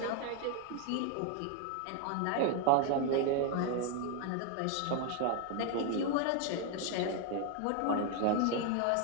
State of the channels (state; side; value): different; both; correlation 0.01